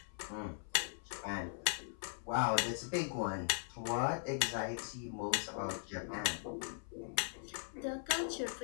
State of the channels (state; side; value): silent; right; 51 dB below the other